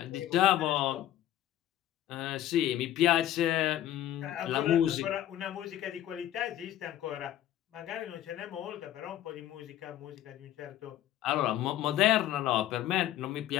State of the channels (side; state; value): right; quieter; 12.5 dB